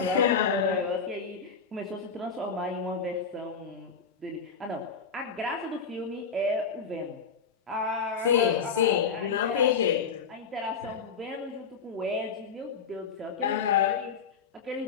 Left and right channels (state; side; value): quieter; right; 5.9 dB